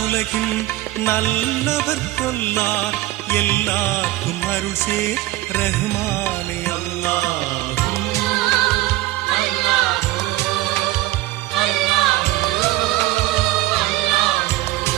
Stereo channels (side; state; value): left; quieter; 16.7 dB